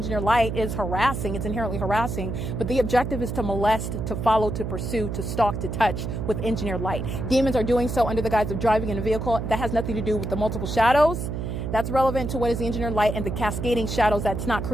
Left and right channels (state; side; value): noise; right; hum, 4 dB below the sound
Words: light is harassing. It's inherently harassing. But the objective is to molest, to follow, to pursue, to stalk, to touch with engineered light. Demons are doing so under the guise of driving in a vehicle. That has nothing to do with the multiple shadows. That's relevant to what is the engineered light and the cascading shadows that's not